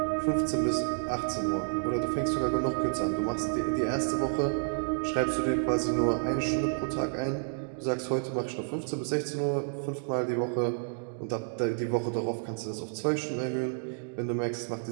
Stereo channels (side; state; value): left; silent; digital silence